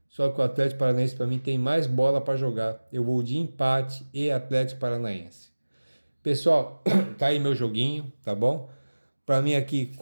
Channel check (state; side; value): inverted; both; correlation -1.00